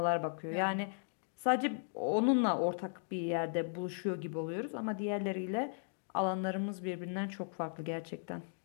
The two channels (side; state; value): right; silent; digital silence